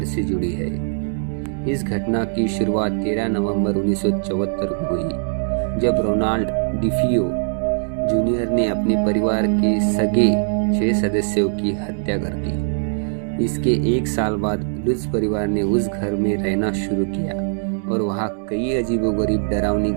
से जुड़ी है। इस घटना की शुरुआत 13 नवंबर 1974 को हुई, जब रोनाल्ड डिफियो जूनियर ने अपने परिवार के सगे 6 सदस्यों की हत्या कर दी। इसके एक साल बाद लुज परिवार ने उस घर में रहना शुरू किया और वहाँ कई अजीबोगरीब डरावनी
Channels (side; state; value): left; silent; digital silence